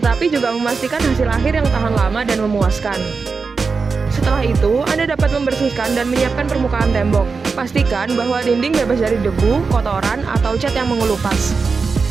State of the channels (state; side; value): quieter; left; 4.8 dB